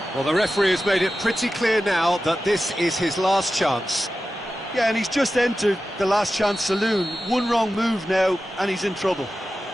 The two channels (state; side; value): normal; both; correlation 0.93